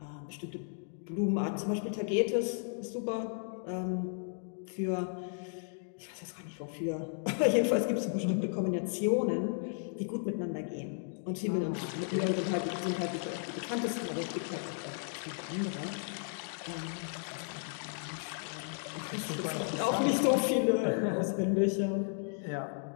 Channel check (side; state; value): right; silent; 55 dB below the other